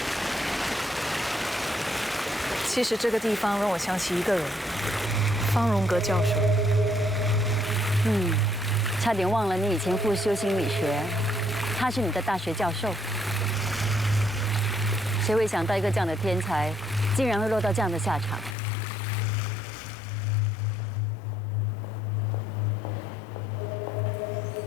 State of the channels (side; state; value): right; drops out; at 18.6 s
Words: 其实这个地方让我想起一个人，方荣格教授。差点忘了你以前复修心理学，他是你的大学教授。谁会想到一个这样的天才，竟然会落到这样的下场？